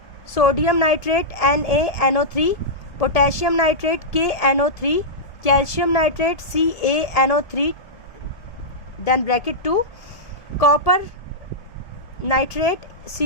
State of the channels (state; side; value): late; right; 1.7 ms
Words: sodium nitrate NaNO3, potassium nitrate KNO3, calcium nitrate CaNO3 then bracket 2, copper nitrate